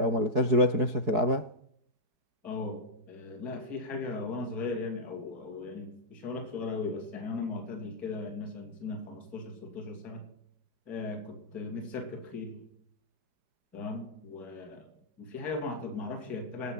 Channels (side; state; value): left; late; 4.7 ms